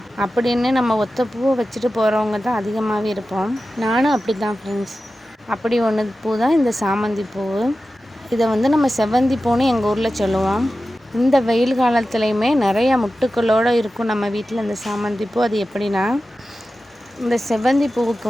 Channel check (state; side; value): normal; both; correlation 0.94